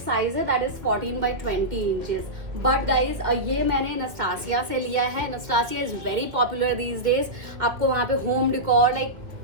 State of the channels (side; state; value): left; late; 2.1 ms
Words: है that is 14x20 inches. But guys ये मैंने नस्टासिया से लिया है. Nestasia is very popular these days. आपको वहाँ पे home decor like